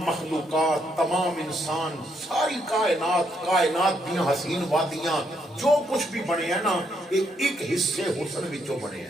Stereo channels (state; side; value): normal; both; correlation 0.75